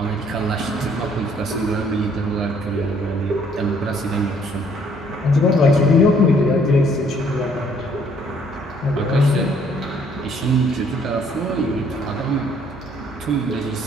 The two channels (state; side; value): normal; both; correlation 0.63